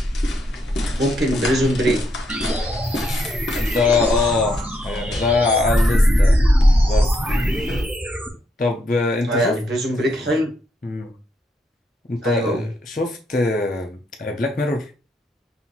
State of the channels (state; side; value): normal; both; correlation 0.77